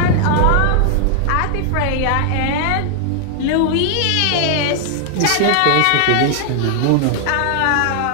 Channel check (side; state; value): both; different; correlation -0.01